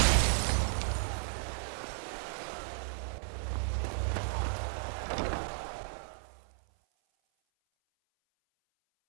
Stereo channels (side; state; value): left; silent; 55 dB below the other